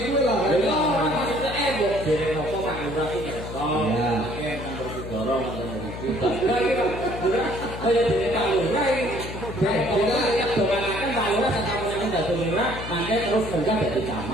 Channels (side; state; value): left; noise; hum, 9 dB below the sound